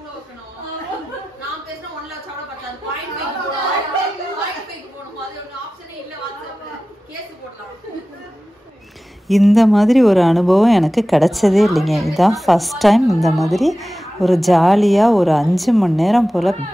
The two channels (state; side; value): normal; both; correlation 0.95